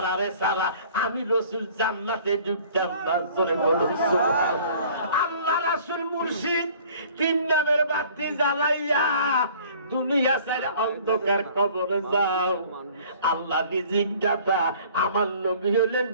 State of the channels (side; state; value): both; inverted; correlation -0.51